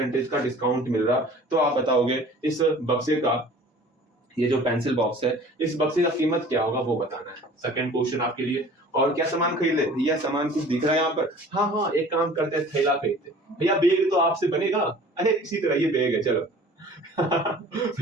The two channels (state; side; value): normal; both; correlation 0.47